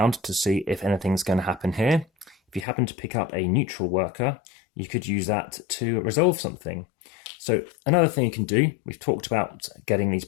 to see if anything's going to happen here. If you happen to pick up a neutral worker, you could use that to resolve something. So another thing you can do, we've talked about getting these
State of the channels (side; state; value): right; drops out; at 2.7 s